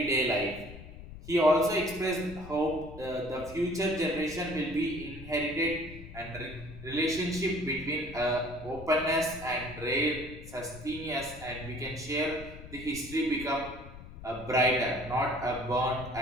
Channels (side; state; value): left; noise; rumble, 14 dB below the sound